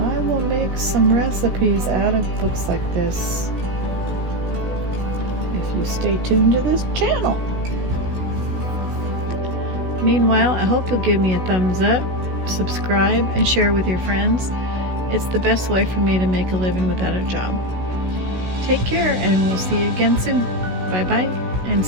will make some recipes out of books like this if you stay tuned to this channel. Meanwhile, I hope you'll give me a thumbs up, subscribe, and share with your friends. It's the best way for me to make a living without a job. Take care, and we'll see you again soon. Bye-bye, and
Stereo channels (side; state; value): left; late; 16 ms